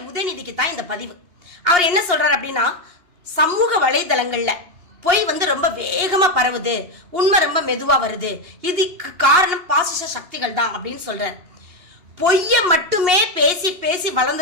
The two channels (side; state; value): left; late; 2.8 ms